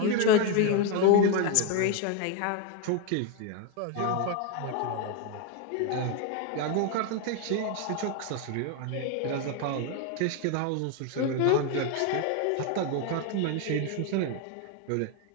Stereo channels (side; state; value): both; different; correlation 0.02